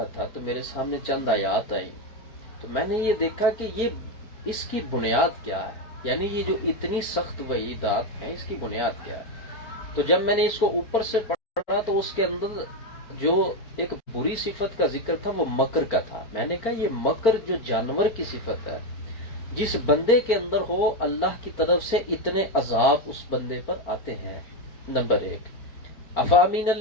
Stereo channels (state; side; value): late; right; 4.4 ms